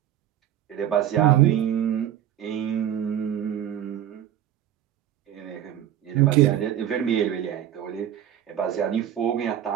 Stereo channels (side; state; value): left; quieter; 11.0 dB